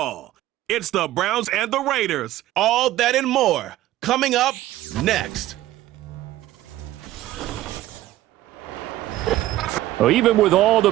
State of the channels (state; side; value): quieter; left; 14.9 dB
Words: It's the Browns and the Raiders. All that and more coming up next. Well, even with all the